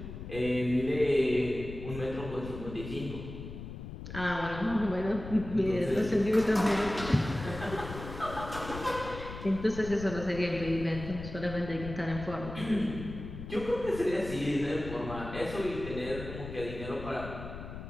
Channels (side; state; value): left; noise; rumble, 10 dB below the sound